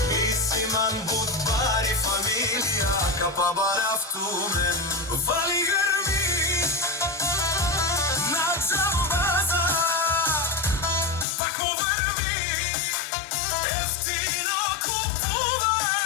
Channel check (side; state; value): right; drops out; at 11.2 s